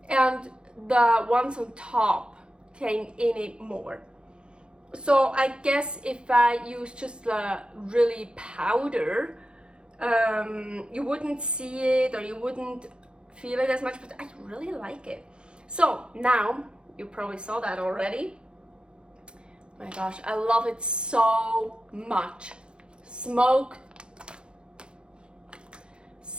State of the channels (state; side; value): late; left; 0.053 ms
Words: And the ones on top came in it more. So I guess if I use just the really powder, you wouldn't see it or you wouldn't feel it as much, but I really like it. So now, you probably saw that already. My gosh, I love it so much. Smoked